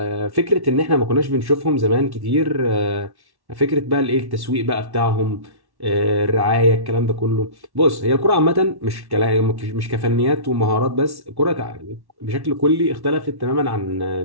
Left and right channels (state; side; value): late; left; 1.1 ms